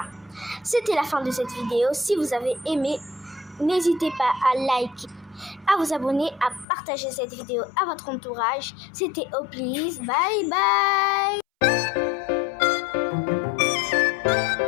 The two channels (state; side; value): drops out; right; at 6.7 s